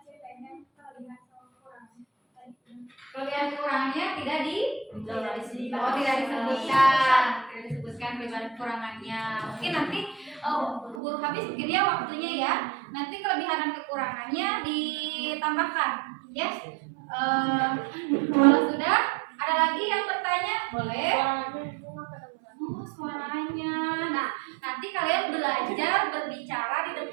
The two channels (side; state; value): left; drops out; at 11.0 s